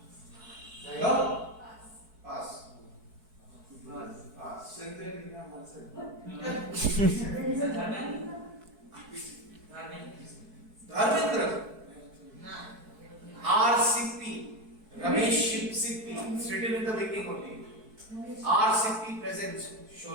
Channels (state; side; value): late; left; 4.6 ms